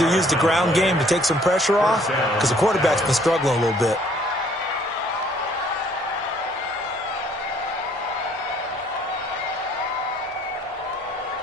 use the ground game to take some pressure off because the quarterback's been struggling a little bit.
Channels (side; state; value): both; normal; correlation 0.61